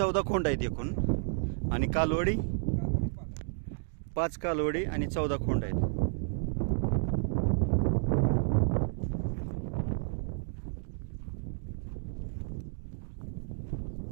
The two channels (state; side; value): silent; left; digital silence